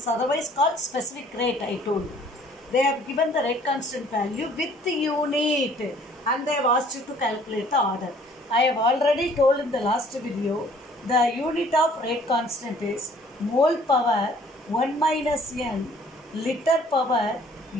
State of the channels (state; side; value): normal; both; correlation 0.57